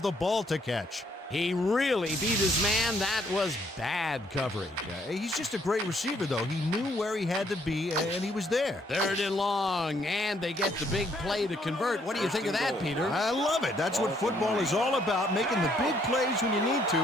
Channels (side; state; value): both; normal; correlation 0.68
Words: the ball to catch. He really beat his man. That was bad coverage. He's just a great receiver, though. He knew where he had to be, and he was there. Third and long, and they get the big play to convert. What do you think of that, Peter? I love it. That's what football is all about, making the big plays when you need to,